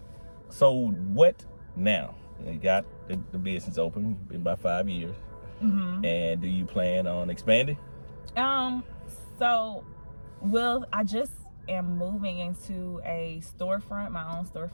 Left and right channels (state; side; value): inverted; both; correlation -1.00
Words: so what now? You got the business open, been about 5 years, and do you plan on expanding? So, I just am moving into a storefront, my own